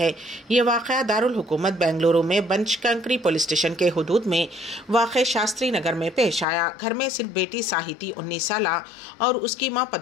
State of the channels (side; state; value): right; drops out; at 6.5 s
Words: ये वाक़या दारुल हुकूमत बेंगलुरु में बनशंकरी पुलिस स्टेशन के हुदूद में वाक़े शास्त्री नगर में पेश आया। घर में सिर्फ बेटी साहिती 19 साल और उसकी माँ